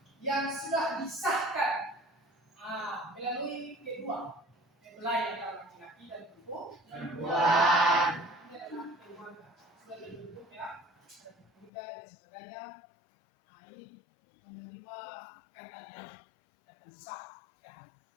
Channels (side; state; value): right; drops out; at 11.7 s